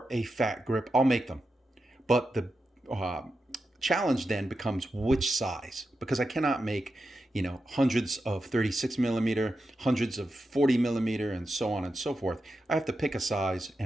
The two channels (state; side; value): normal; both; correlation 0.89